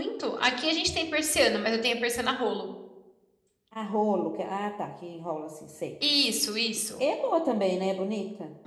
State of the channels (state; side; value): identical; both; correlation 1.00